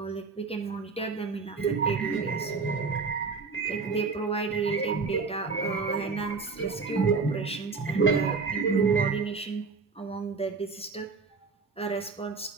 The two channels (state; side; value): quieter; left; 4.6 dB